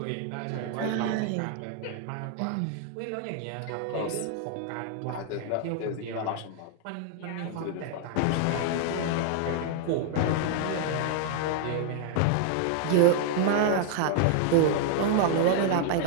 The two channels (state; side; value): different; both; correlation 0.00